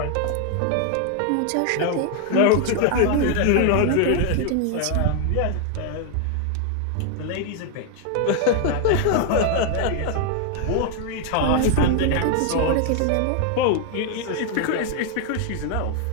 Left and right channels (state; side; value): different; both; correlation 0.00